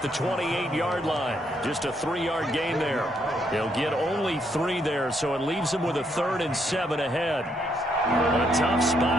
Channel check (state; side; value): normal; both; correlation 0.74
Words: 28-yard line. Just a 3-yard gain there. He'll get only 3 there, so it leaves him with a 3rd and 7 ahead. A tough